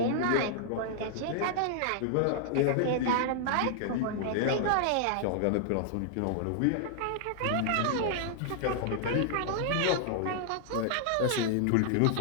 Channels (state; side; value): different; both; correlation -0.01